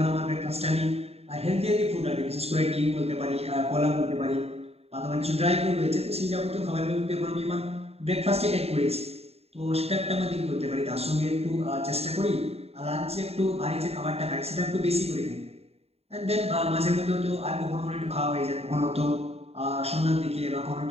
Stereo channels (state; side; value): late; left; 0.29 ms